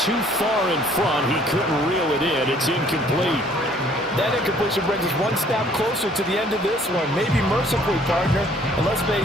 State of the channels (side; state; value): both; normal; correlation 0.59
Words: far in front. He couldn't reel it in. It's incomplete. That incompletion brings us one step closer to the end of this one. Maybe mercifully, partner. And let's